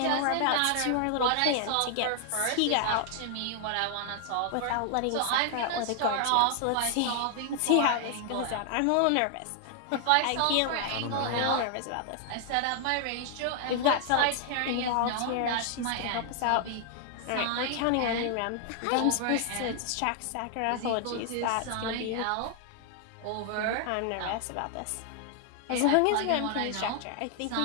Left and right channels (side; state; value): both; different; correlation 0.00